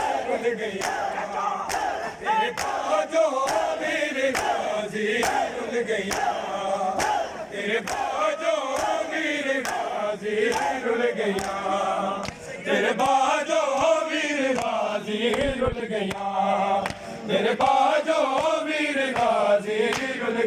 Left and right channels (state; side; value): identical; both; correlation 1.00